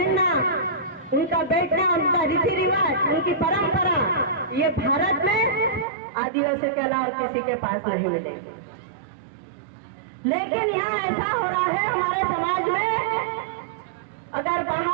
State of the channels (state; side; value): drops out; left; at 5.9 s